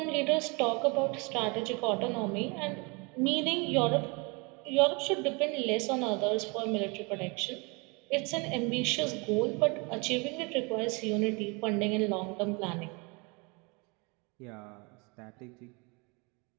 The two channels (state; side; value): quieter; left; 29.8 dB